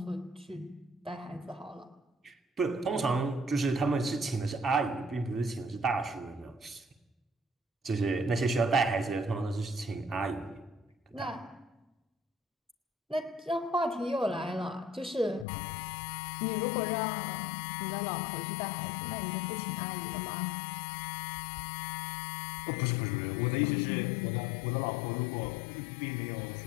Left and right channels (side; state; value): right; drops out; at 15.5 s